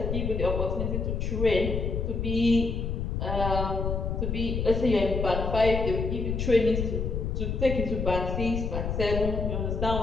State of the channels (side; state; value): left; noise; rumble, 1 dB below the sound